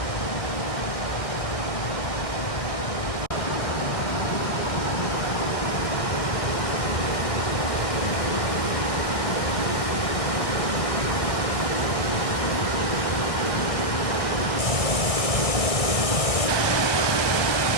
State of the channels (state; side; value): late; right; 1.6 ms